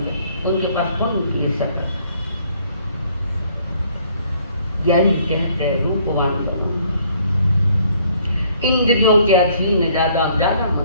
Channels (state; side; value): inverted; both; correlation -0.63